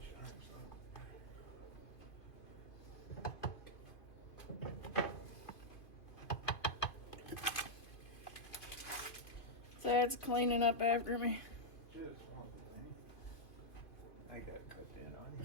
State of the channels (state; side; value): late; right; 2.5 ms